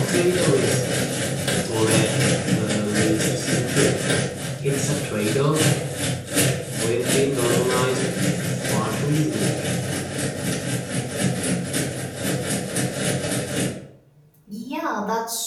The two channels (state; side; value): identical; both; correlation 1.00